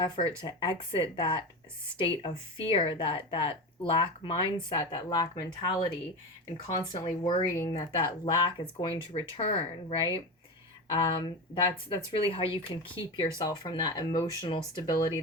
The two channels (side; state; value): both; normal; correlation 0.22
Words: to exit that state of fear, that lack mindset, that lack mentality, and constantly worrying that lack is going to return, right? That's really how you can keep yourself from that emotional stability,